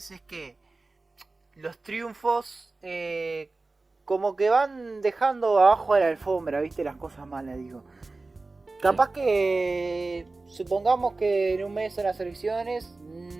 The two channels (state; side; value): quieter; left; 3.5 dB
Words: es que los triunfos como que van dejando abajo de la alfombra, viste, las cosas malas, digo. Capaz que supongamos que en un mes en las elecciones